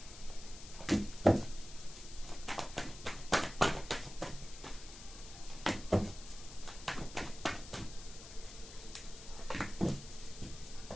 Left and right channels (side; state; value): left; noise; hiss, 14 dB below the sound